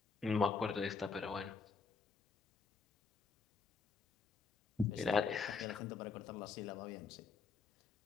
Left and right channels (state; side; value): quieter; right; 5.2 dB